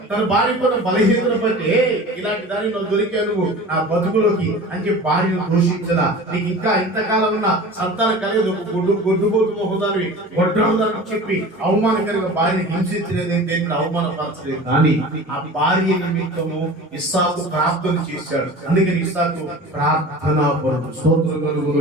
తన భార్య పైన బలహీనతను బట్టి ఇలాంటి దాన్ని నువ్వు దొరికా నువ్వు నా బతుకులోకి అని చెప్పి భార్యను దూషించదా. నీకు ఇంకా ఇంతకాలం ఉన్న సంతానం కలిగదు, గొడ్డుబోతు మొహదాన్ని గొడ్రాలని చెప్పి అవమానకరంగా భార్యని హింసించలేదు, దేవుడు అవమానపరచలేదు. కానీ ఆ భార్య నిమిత్తము ఇస్సాకు ప్రార్థన చేశాడు. అందుకని ఇస్సాకు ప్రార్థనా పరుడు. స్తోత్రం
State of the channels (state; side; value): normal; both; correlation 0.38